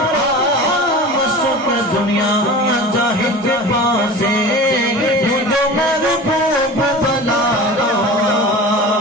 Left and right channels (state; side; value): normal; both; correlation 0.35